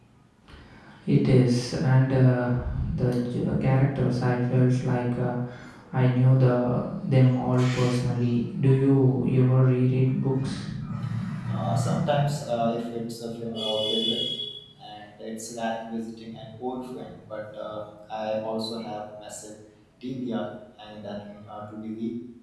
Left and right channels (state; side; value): identical; both; correlation 1.00